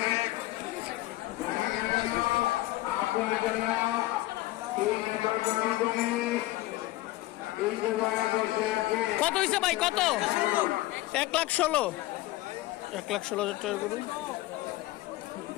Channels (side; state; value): right; quieter; 17.7 dB